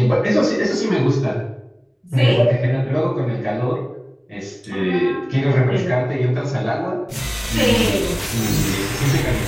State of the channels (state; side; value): identical; both; correlation 1.00